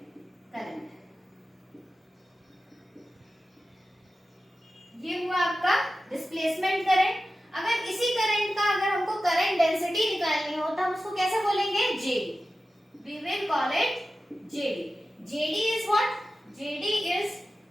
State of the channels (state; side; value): normal; both; correlation 0.94